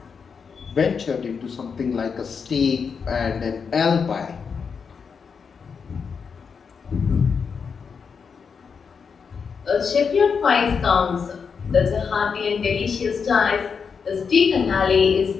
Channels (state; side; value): quieter; right; 6.0 dB